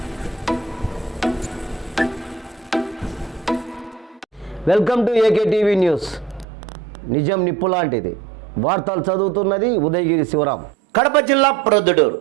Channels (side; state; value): left; drops out; at 6.5 s